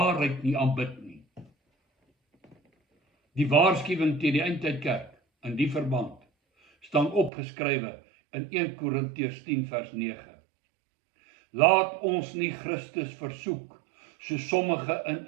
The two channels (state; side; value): drops out; left; at 7.3 s